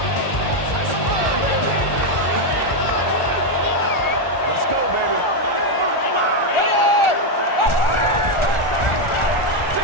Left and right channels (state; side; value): late; right; 1.4 ms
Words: Let's go, baby.